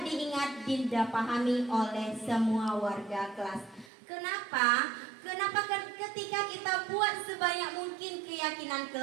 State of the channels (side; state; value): left; drops out; at 3.9 s